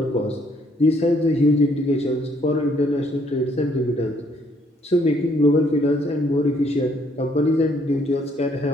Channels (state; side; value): normal; both; correlation 0.67